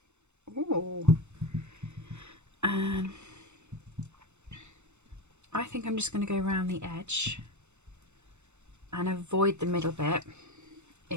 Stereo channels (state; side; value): late; left; 0.83 ms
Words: Ooh. And I think I'm just going to go around the edge and avoid the middle bit